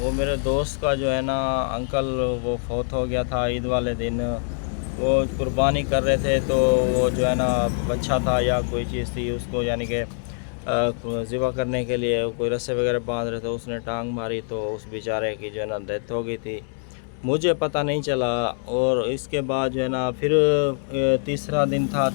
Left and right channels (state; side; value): silent; right; digital silence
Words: मेरे दोस्त का जो है ना अंकल, वो फौत हो गया था ईद वाले दिन। वो कुर्बानी कर रहे थे, तो वो जो है ना बच्चा था या कोई चीज़ थी उसको, यानी कि ज़िबा करने के लिए कोई रस्से वगैरह बांध रहे थे, उसने टांग मारी तो उस बेचारे की जो है ना डेथ हो गई थी। मुझे पता नहीं चला। और इसके बाद जो है ना फिर तीसरा दिन था,